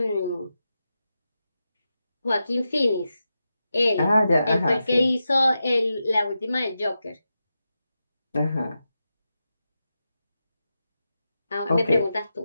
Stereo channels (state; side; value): inverted; both; correlation -0.90